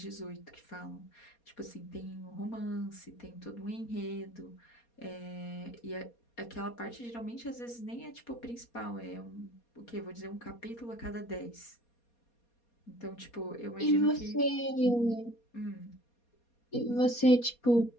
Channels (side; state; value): right; late; 4.2 ms